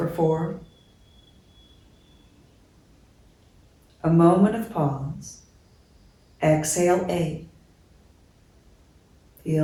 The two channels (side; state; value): both; identical; correlation 1.00